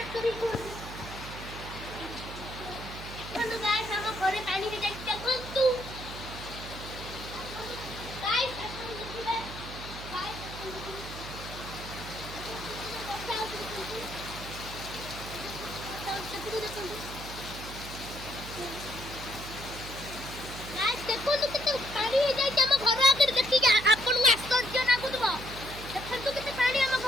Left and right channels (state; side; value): noise; right; hum, 10 dB below the sound